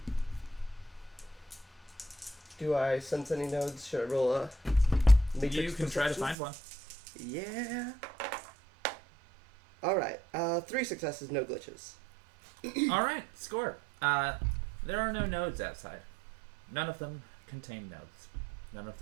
Do I sense any nodes? Should I roll a matrix You can try to perception? find one. Yeah. Alright, 3 successes, no glitches. Alright, score. There are no nodes outside. None of them contain nodes. None of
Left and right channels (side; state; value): left; drops out; at 6.4 s